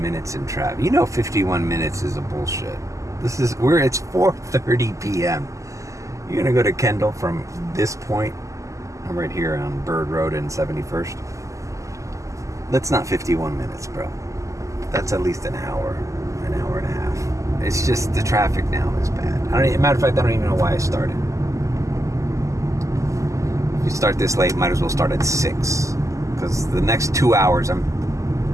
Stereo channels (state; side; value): late; left; 0.16 ms